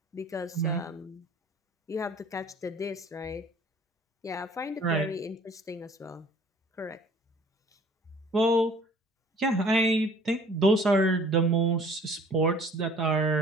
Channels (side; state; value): both; normal; correlation 0.52